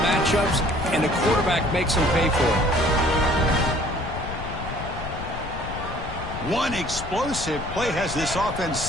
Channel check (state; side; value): noise; left; rumble, 9 dB below the sound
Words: matchups, and the quarterback makes them pay for it. One explosive play has this offense